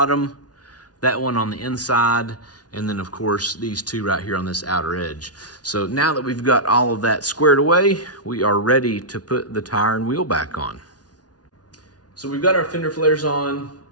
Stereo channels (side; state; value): right; late; 0.69 ms